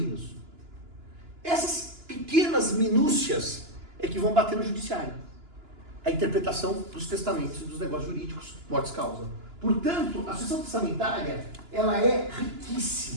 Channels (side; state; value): left; late; 2.9 ms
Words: Essas pequenas minúcias é que vão bater no judiciário. A interpretação dos testamentos e dos negócios jurídicos, mortes causa. Portanto, a sucessão testamentária, ela é